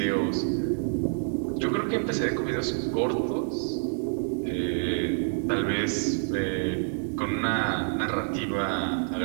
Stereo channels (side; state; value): left; silent; digital silence